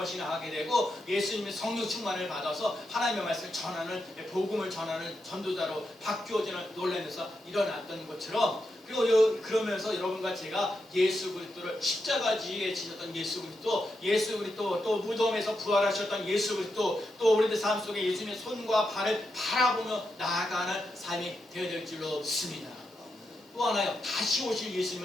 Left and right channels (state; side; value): normal; both; correlation 0.85